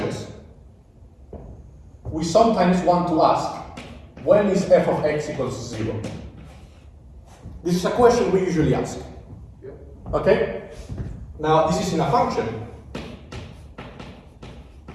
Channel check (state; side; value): identical; both; correlation 1.00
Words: we sometimes want to ask, when is f of x equals 0? This is a question we usually ask. Okay? Now, this is in a function.